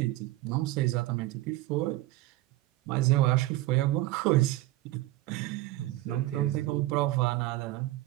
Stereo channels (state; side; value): quieter; left; 17.1 dB